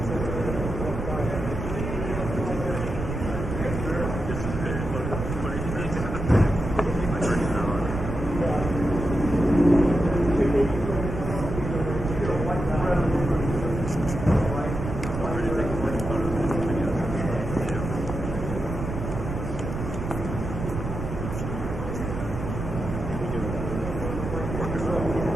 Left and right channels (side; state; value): right; noise; rumble, 5 dB below the sound